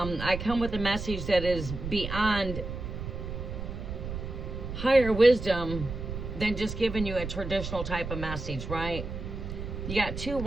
come with a message that is beyond higher wisdom than just giving you a traditional type of message, right? You got 2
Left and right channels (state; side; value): noise; right; rumble, 6 dB below the sound